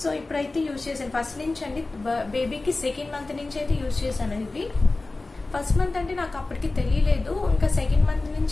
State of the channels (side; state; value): right; quieter; 3.3 dB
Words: So ఇప్పుడైతే యూజ్ చేశాను. ఫస్ట్ నుంచి అండి, బేబీకి 2nd month నుంచి అయితే యూజ్ చేశాను. ఇవి ఫస్ట్ మంత్ అంటే నాకు అప్పటికి తెలియలేదు. ఇంకా 2nd month